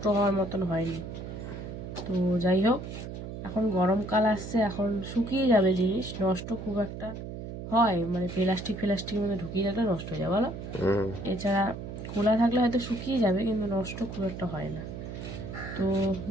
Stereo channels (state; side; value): noise; right; hum, 9 dB below the sound